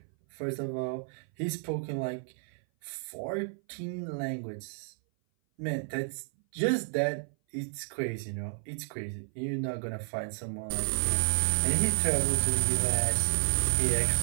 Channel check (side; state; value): left; silent; 57 dB below the other